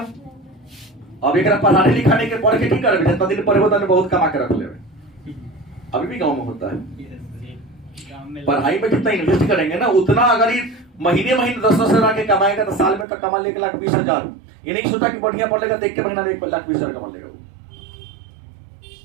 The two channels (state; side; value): drops out; left; at 13.1 s